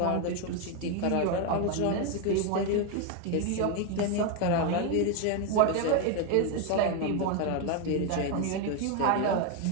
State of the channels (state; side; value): different; both; correlation 0.01